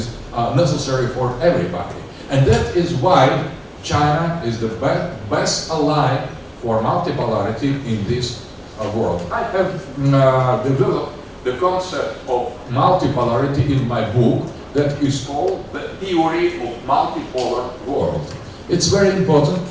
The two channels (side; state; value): both; identical; correlation 1.00